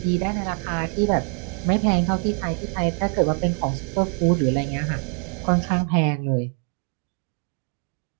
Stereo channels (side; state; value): left; quieter; 39.9 dB